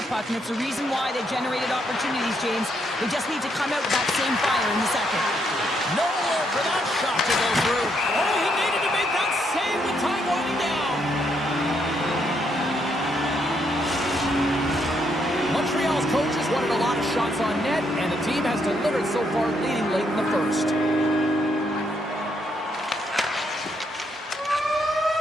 puck, and it's the reason why they generated opportunities, James. They just need to come out with that same fire in the second. Nowhere for that shot to go through. Oh, he needed to make that save with time winding down. Montreal's start leading late in the first.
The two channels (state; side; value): normal; both; correlation 0.75